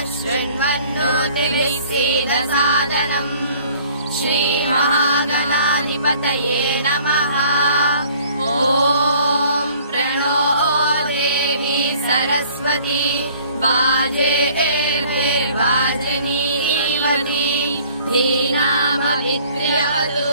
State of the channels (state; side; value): inverted; both; correlation -0.54